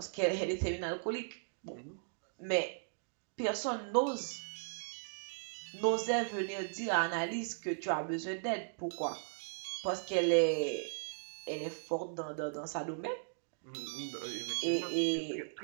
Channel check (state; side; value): silent; left; digital silence